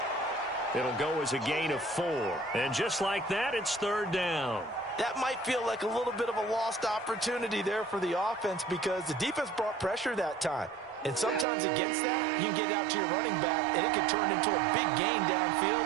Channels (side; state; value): left; drops out; at 11.5 s